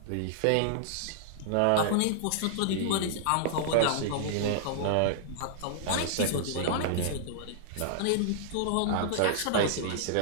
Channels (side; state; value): both; different; correlation -0.01